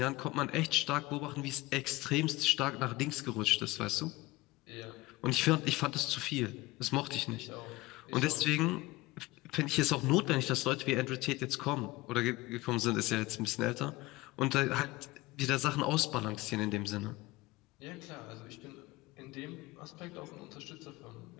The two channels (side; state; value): right; quieter; 20.1 dB